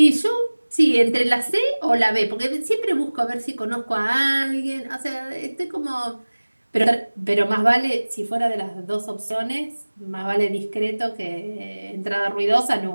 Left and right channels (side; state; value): both; inverted; correlation -1.00